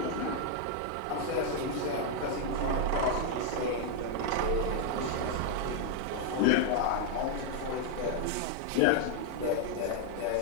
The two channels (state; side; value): different; both; correlation 0.00